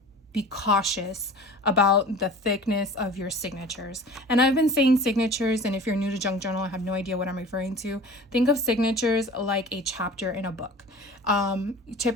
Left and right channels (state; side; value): normal; both; correlation 0.41